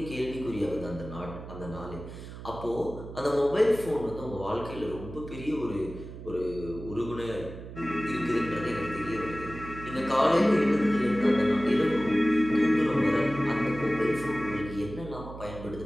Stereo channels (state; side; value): noise; right; hum, 12 dB below the sound